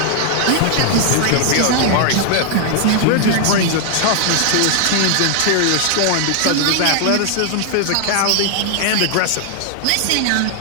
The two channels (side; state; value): both; different; correlation 0.00